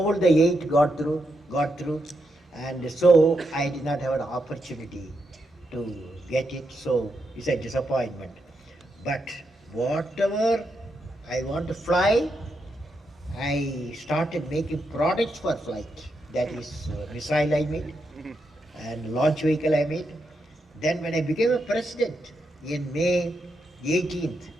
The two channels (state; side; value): normal; both; correlation 0.83